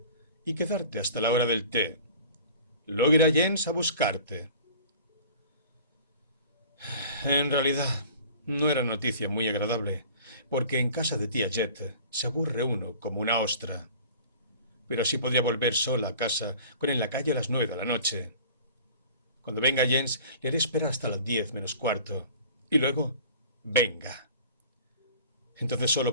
y quedarte hasta la hora del té. Luego irá Jens a buscarte. En realidad, no era noticia muy agradable, porque en casa de tía Jet se aburre uno como una ostra. Pero sí podría volver sola a casa con en la calle a las 9 de la noche. Cuando venga Jens, le haré esperar hasta las 10 menos cuarto. Y luego, venga. Entonces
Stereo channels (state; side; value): inverted; both; correlation -0.45